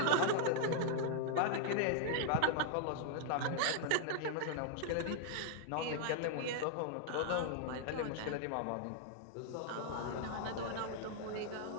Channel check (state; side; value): different; both; correlation -0.01